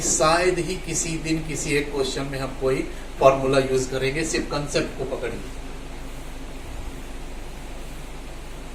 शायद ही किसी दिन किसी एक क्वेश्चन में हम कोई फॉर्मूला यूज करेंगे, सिर्फ कंसेप्ट को पकड़िए।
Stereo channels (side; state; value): both; identical; correlation 1.00